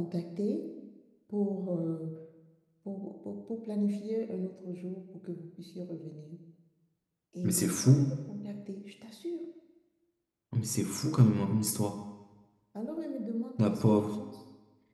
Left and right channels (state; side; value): identical; both; correlation 1.00